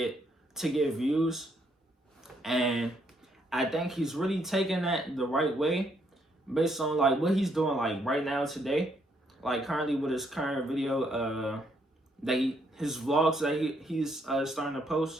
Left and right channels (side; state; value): both; normal; correlation 0.72